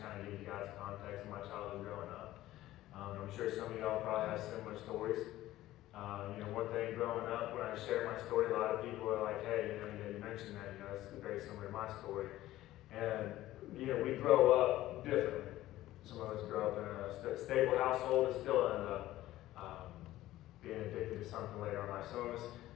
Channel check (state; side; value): quieter; right; 15.3 dB